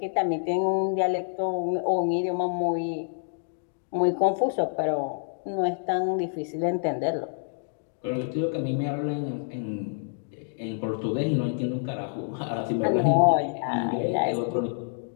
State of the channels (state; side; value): silent; right; digital silence